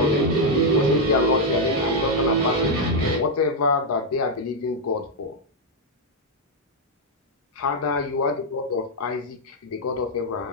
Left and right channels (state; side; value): normal; both; correlation -0.01